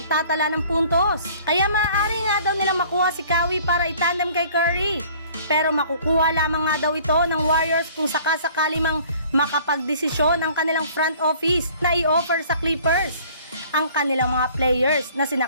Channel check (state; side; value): inverted; both; correlation -0.53